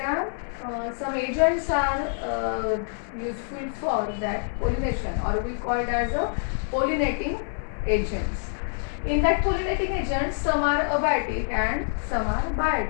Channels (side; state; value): right; silent; 61 dB below the other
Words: are some agents are useful for that pollination, or we call it as a pollinating agents. In that pollinating agents, some are abiotic and some are